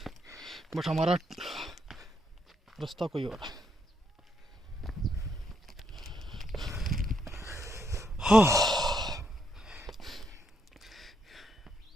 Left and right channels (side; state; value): both; normal; correlation 0.77